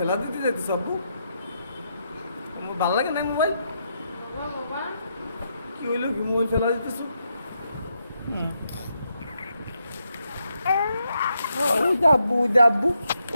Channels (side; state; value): both; inverted; correlation -0.80